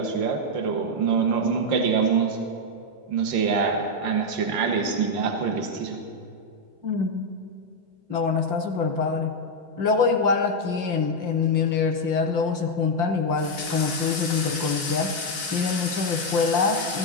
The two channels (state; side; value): late; left; 5.8 ms